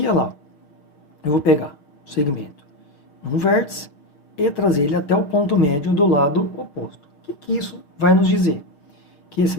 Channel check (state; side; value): late; right; 6.4 ms